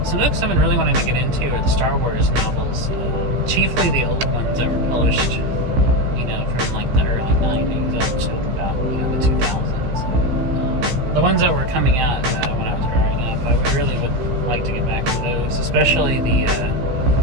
some books I've been really wanting to get into are the Star Wars novels, chiefly the old ones that were published, from like the early 90s up to about the 2000s. The ones that were coming out when I was growing up, I really would like to get back to those, especially the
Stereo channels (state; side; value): late; left; 16 ms